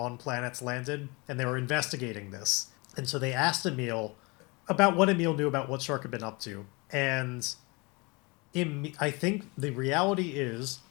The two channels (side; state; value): right; quieter; 27.3 dB